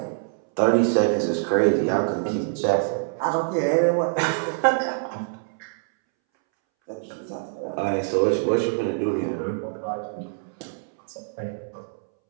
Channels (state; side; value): silent; left; 62 dB below the other